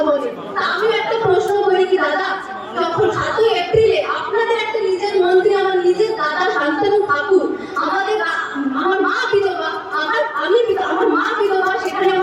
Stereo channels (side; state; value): both; identical; correlation 1.00